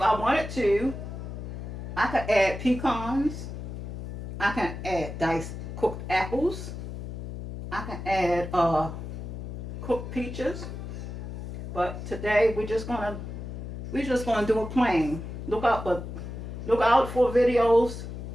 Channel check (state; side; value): noise; left; hum, 8 dB below the sound